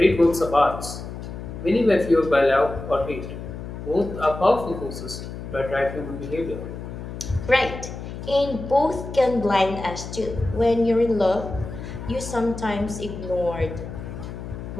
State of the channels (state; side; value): noise; left; hum, 9 dB below the sound